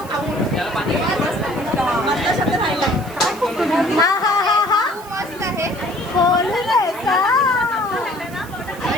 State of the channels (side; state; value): right; noise; hiss, 20 dB below the sound